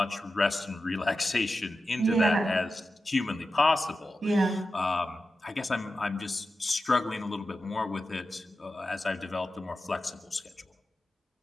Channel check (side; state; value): both; normal; correlation 0.92